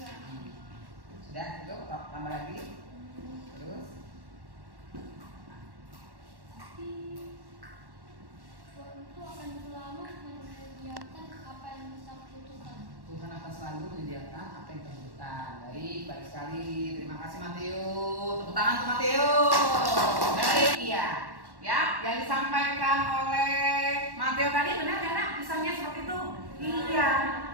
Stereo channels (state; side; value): late; left; 1.1 ms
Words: Sudah, cukup, tambah lagi. Terus Tuhan itu akan selalu menyediakan apa yang kita butuhkan. Tuhan akan selalu menyediakan apa yang kita butuhkan. Baik sekali. Terima kasih Mateo. Tepuk tangan untuk Mateo. Baik, iya. Ya, yang disampaikan oleh Mateo tadi benar ya, Nak? Kisahnya seperti itu.